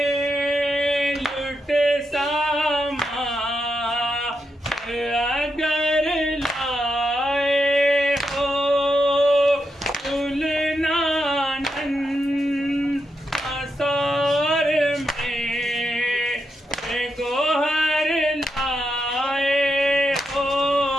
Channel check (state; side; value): normal; both; correlation 0.84